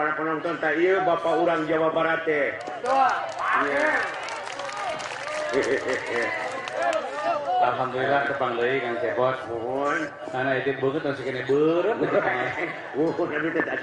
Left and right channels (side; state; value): both; identical; correlation 1.00